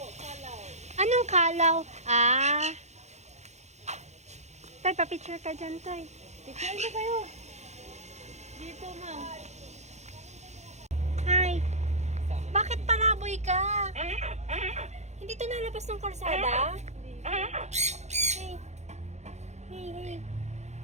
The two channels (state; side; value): late; left; 0.33 ms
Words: kalaw. Anong kalaw? Ah. Tay, pa-picture ka dyan, Tay. Picture na kayo. Dito, ma'am. Hi. Bakit palaboy ka? Hindi to nalabas ng kalsada? Hey. Hey, hey.